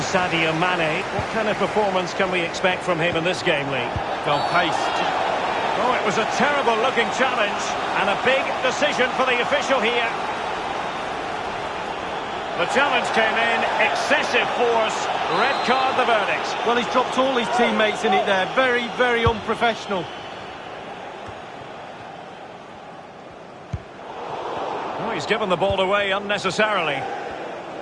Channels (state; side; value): identical; both; correlation 1.00